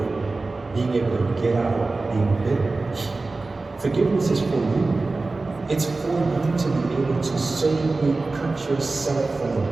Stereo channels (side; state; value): left; quieter; 3.5 dB